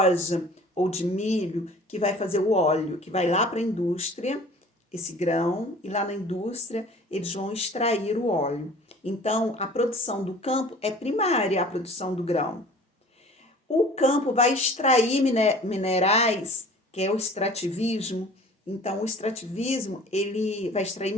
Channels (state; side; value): normal; both; correlation 0.46